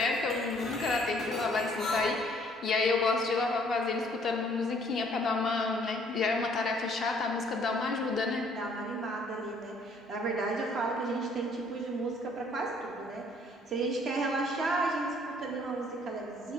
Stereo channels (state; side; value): normal; both; correlation 0.61